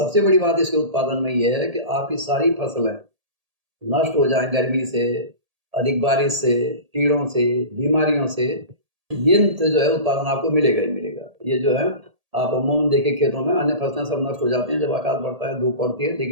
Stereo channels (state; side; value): late; left; 1.8 ms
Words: बड़ी बात इसके उत्पादन में यह है कि आपकी सारी फसलें नष्ट हो जाएं गर्मी से, अधिक बारिश से, कीड़ों से, बीमारियों से, ये जो है उत्पादन आपको मिलेगा ही मिलेगा। ये जो है आप अमूमन देखिए खेतों में अन्य फसलें सब नष्ट हो जाती हैं जब आकाश बढ़ता है, धूप पड़ती है,